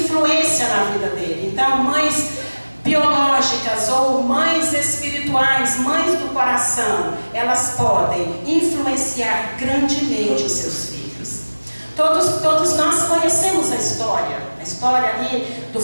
na vida dele. Então, mães biológicas ou mães espirituais, mães do coração, elas podem influenciar grandemente os seus filhos. Todos nós conhecemos a história ali do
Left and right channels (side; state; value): both; inverted; correlation -1.00